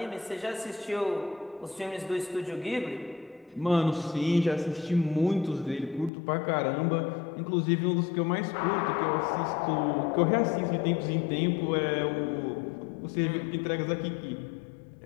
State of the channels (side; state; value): right; drops out; at 6.1 s